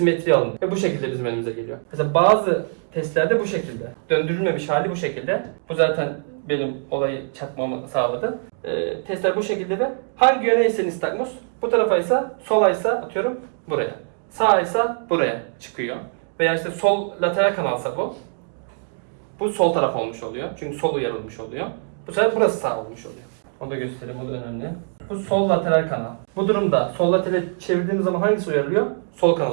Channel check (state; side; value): silent; left; digital silence